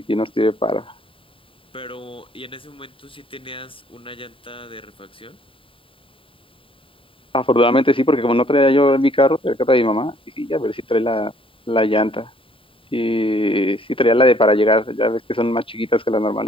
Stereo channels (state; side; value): late; right; 0.25 ms